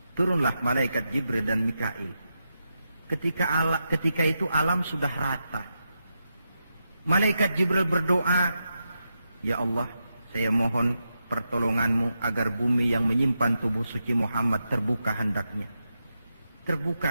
Turunlah malaikat Jibril dan Mikail. Ketika itu alam sudah rata. Malaikat Jibril berdoa, ya Allah, saya mohon pertolonganmu agar bumi yang menyimpan tubuh suci Muhammad terbuka hendaknya.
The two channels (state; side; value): inverted; both; correlation -0.87